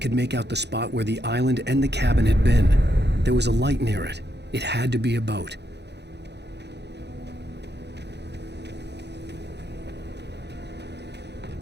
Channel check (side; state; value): left; late; 0.50 ms